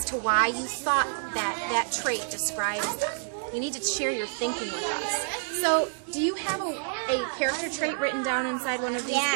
to why you thought that that trait describes them. You need to share your thinking with us. So, do you have a character trait written down inside one of these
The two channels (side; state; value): left; silent; digital silence